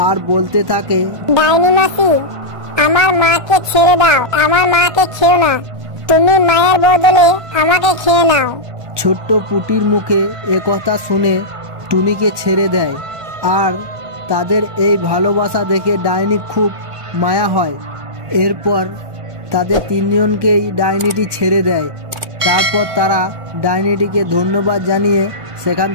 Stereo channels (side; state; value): left; late; 1.3 ms